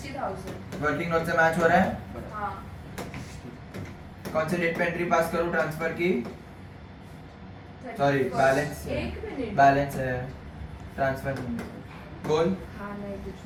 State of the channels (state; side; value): identical; both; correlation 1.00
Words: वर्किंग नोट से मैच हो रहा है हाँ कौन से डेट पे एंट्री पास करूं ट्रांसफर की सॉरी बैलेंस एक मिनट बैलेंस है ट्रांसफर बोल हाँ नहीं कुछ